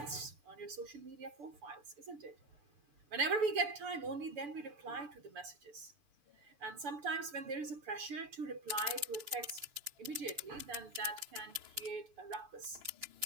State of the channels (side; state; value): left; late; 6.9 ms